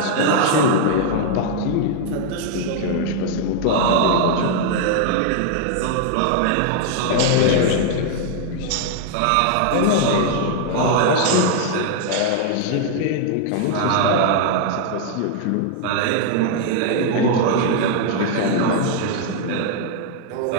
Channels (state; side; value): different; both; correlation 0.00